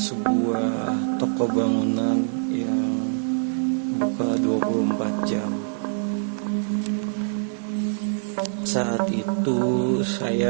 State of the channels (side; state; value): left; silent; 55 dB below the other